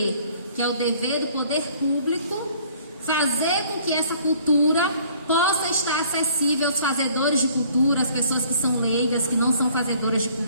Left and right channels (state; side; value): inverted; both; correlation -0.57